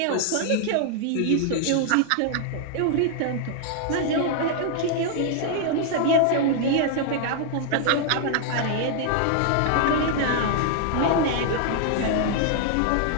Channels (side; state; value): both; different; correlation 0.00